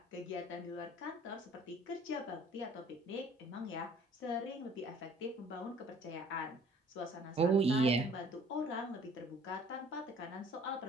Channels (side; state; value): both; normal; correlation 0.54